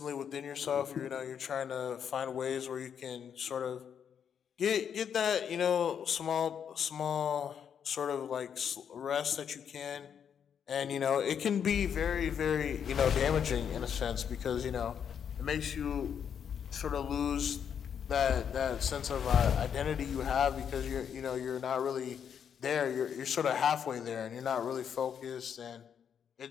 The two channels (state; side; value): quieter; right; 8.0 dB